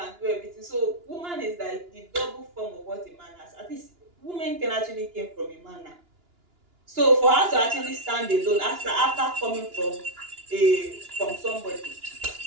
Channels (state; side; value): late; left; 2.9 ms